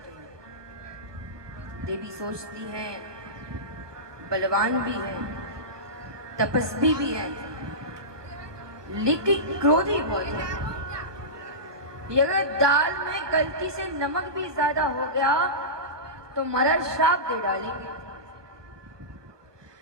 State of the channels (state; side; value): late; left; 1.3 ms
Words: हैं। देवी सोचती हैं बलवान भी है, तपस्वी भी है, लेकिन क्रोधी बहुत है। अगर दाल में गलती से नमक भी ज्यादा हो गया तो महाराज श्राप दे डालेंगे।